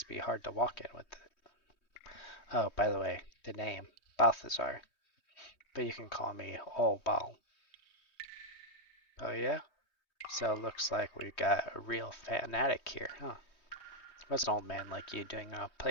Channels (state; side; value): late; right; 3.2 ms